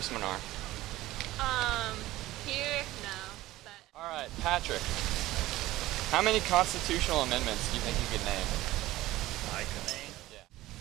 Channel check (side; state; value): left; quieter; 16.7 dB